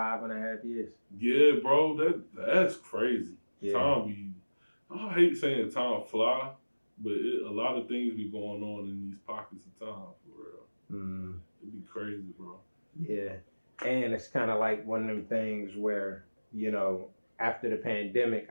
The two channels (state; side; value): inverted; both; correlation -1.00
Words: years. Yeah, bro, that's crazy. Yeah. I hate saying time fly, but a lot of things be going on in these pockets of time, for real. It'd be crazy, bro. Yeah. And it's kind of like one of them things where, after the pandemic,